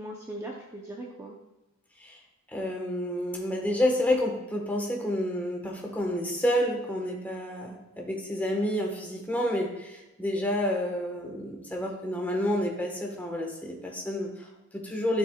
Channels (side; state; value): both; normal; correlation 0.69